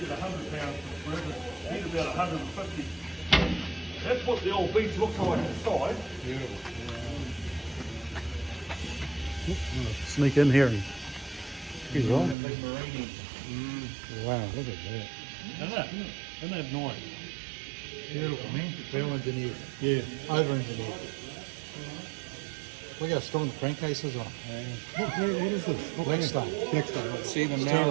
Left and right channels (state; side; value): drops out; left; at 12.4 s